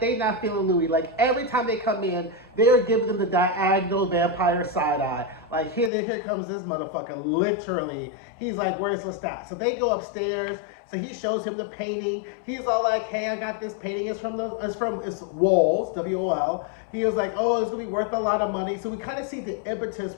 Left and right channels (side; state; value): right; drops out; at 5.9 s